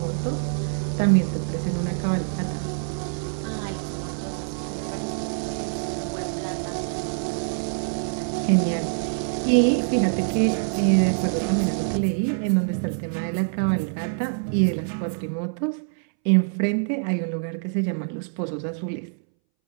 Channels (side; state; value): left; silent; 62 dB below the other